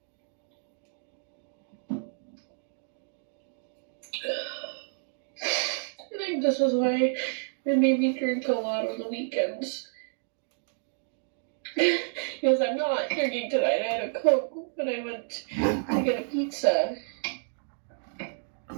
I think this is why it made me drink a lot on the weekends. Because I'm not drinking tonight. I had a Coke when I went to get a pizza. And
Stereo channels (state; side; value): silent; left; digital silence